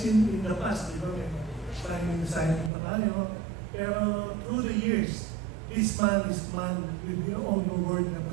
in the past, di ba? Signing pa tayo. Pero through the years, this man is man with your own word na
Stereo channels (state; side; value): drops out; left; at 2.7 s